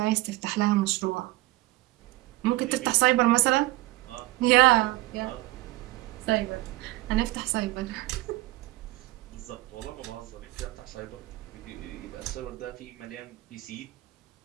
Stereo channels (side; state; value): left; quieter; 19.4 dB